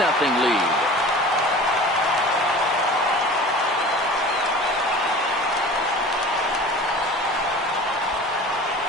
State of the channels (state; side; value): normal; both; correlation 0.40